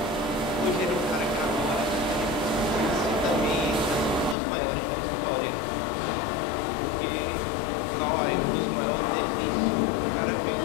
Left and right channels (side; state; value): right; drops out; at 4.4 s